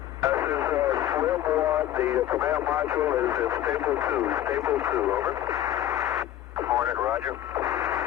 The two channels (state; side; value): quieter; right; 12.4 dB